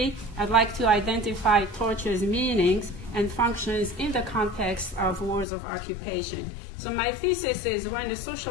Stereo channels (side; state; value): right; drops out; at 5.5 s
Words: I'd like to identify torture's meanings and functions in the context of wars of occupation. So my thesis is when the